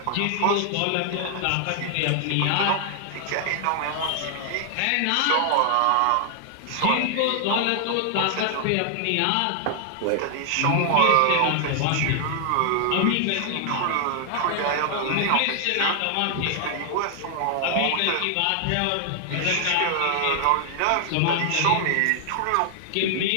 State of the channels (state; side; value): different; both; correlation 0.00